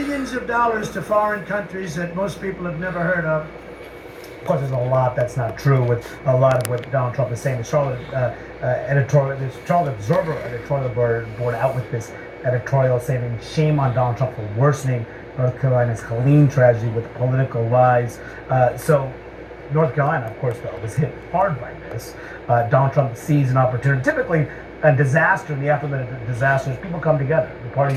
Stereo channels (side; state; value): both; identical; correlation 1.00